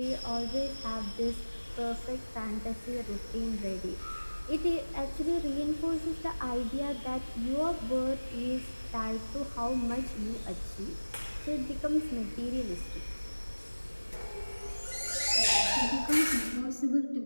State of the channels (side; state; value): both; inverted; correlation -1.00